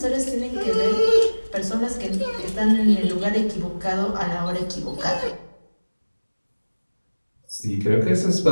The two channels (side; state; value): both; inverted; correlation -1.00